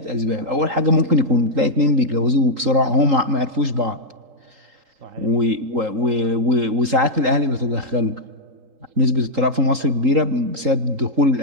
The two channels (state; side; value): late; left; 3.8 ms